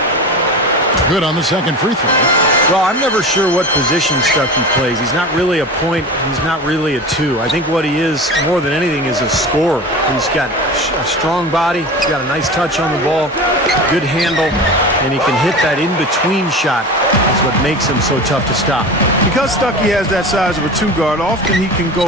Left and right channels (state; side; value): normal; both; correlation 0.31